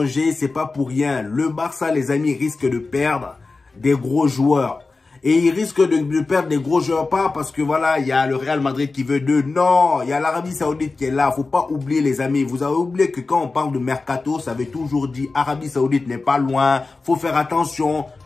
c'est pas pour rien. Le Barça, les amis, risque de perdre des gros joueurs. Et il risque de perdre des gros joueurs, pas parce que voilà, il y a le Real Madrid qui veut d'eux. Non, il y a l'Arabie Saoudite qui est là. Faut pas oublier, les amis. Vous avez oublié que quand on parle de mercato, ça veut toujours dire Arabie Saoudite n'est pas loin. Faut faire attention.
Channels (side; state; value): right; quieter; 3.8 dB